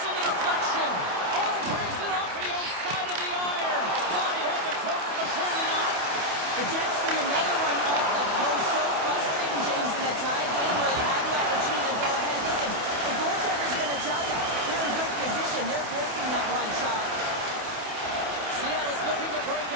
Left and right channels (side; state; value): left; late; 28 ms